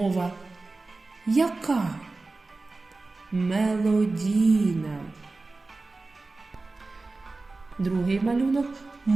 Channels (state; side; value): quieter; left; 3.4 dB